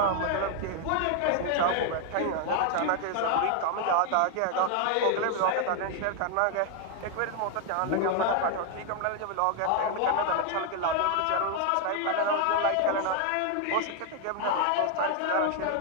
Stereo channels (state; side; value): different; both; correlation 0.00